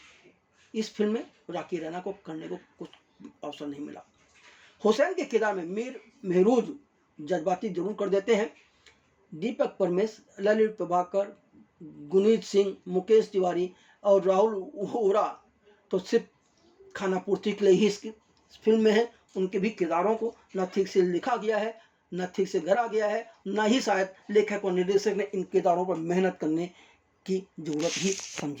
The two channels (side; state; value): both; identical; correlation 1.00